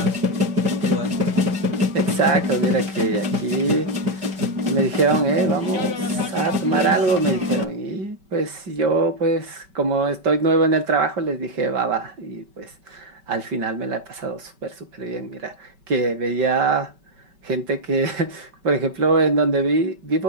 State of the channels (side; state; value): left; late; 5.2 ms